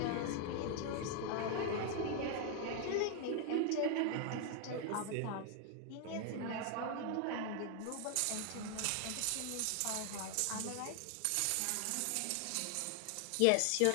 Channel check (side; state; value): both; different; correlation 0.00